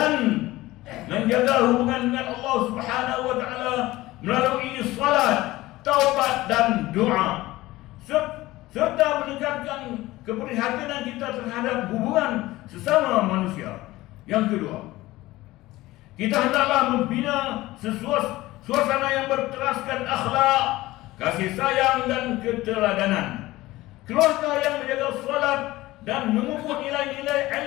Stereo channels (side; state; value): right; quieter; 18.0 dB